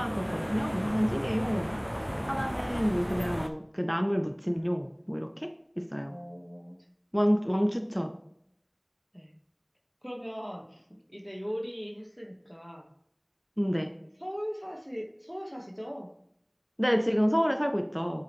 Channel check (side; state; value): both; identical; correlation 1.00